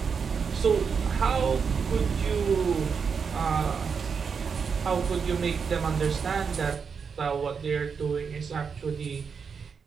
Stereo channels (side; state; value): left; quieter; 6.0 dB